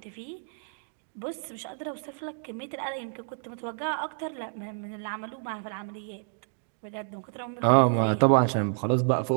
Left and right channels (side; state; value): left; silent; digital silence